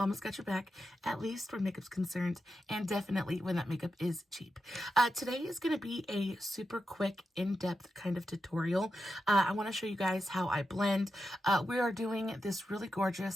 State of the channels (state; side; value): normal; both; correlation 0.88